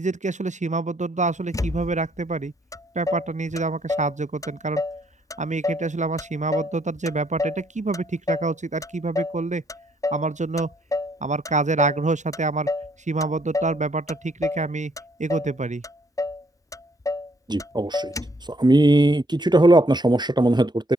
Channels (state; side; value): normal; both; correlation 0.68